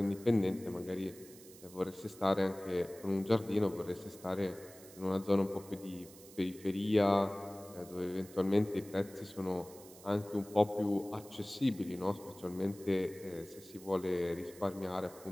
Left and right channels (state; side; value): noise; right; hiss, 20 dB below the sound